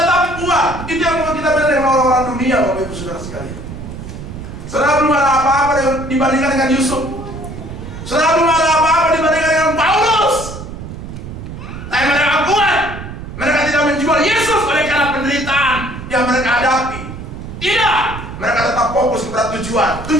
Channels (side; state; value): right; noise; rumble, 10 dB below the sound